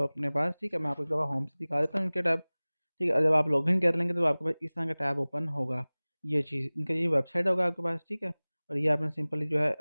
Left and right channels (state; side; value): inverted; both; correlation -1.00